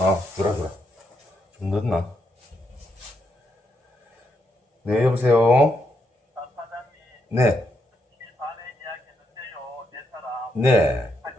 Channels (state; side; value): normal; both; correlation 0.79